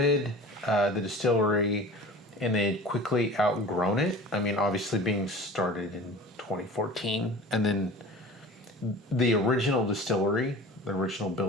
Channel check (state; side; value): normal; both; correlation 0.39